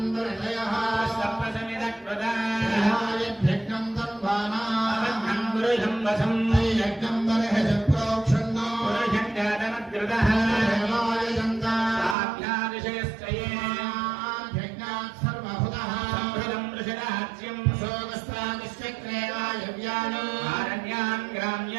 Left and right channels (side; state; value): left; drops out; at 12.2 s